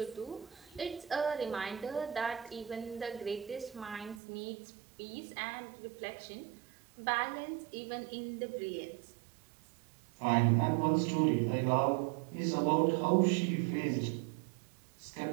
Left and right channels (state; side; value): drops out; left; at 4.2 s